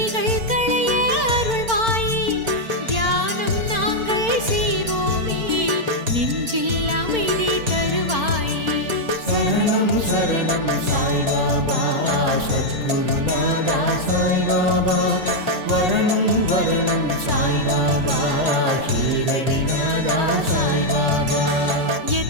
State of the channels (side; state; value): left; late; 4.5 ms